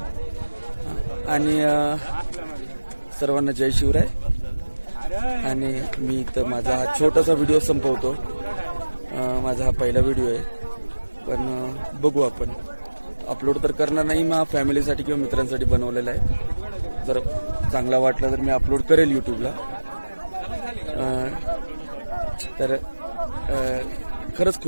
आणि सर्वांना जय शिवराय. आणि मी इथं माझा हा छोटासा व्हिडिओ संपवतो. माझा हा पहिला व्हिडिओ आहे, पण बघू, आपण अपलोड तर करणार नाही, मग फॅमिलीसाठी किंवा मित्रांसाठी बनवलेला आहे. जर चांगला वाटला तर मी अपलोड करेल यूट्यूबला. तर खरंच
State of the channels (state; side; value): inverted; both; correlation -1.00